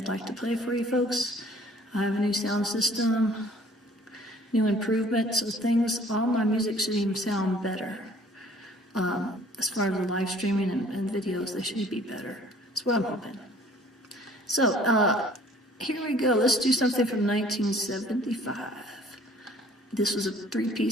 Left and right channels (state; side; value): normal; both; correlation 0.54